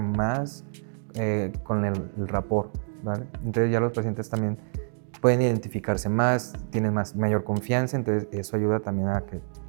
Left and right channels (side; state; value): left; silent; digital silence